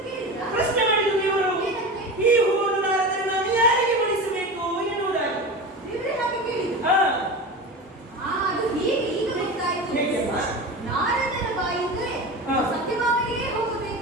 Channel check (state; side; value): normal; both; correlation 0.28